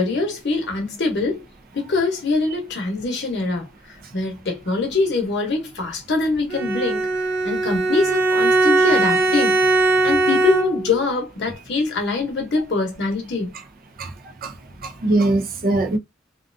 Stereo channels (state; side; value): normal; both; correlation 0.65